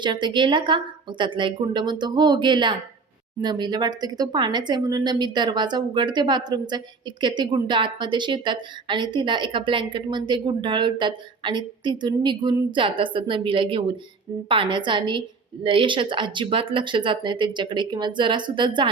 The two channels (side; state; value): left; quieter; 4.5 dB